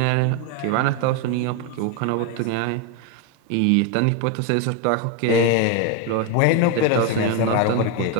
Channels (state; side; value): different; both; correlation 0.02